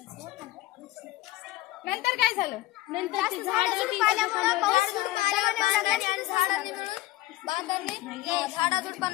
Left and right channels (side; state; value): right; quieter; 17.3 dB